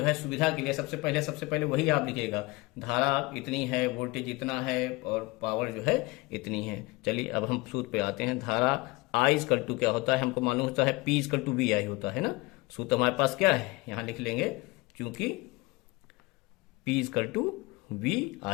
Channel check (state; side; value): quieter; right; 23.7 dB